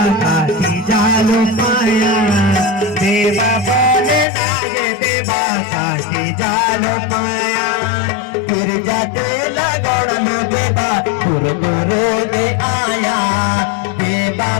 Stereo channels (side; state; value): right; drops out; at 4.2 s